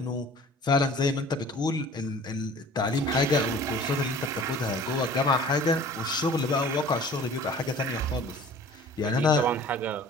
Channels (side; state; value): both; normal; correlation 0.47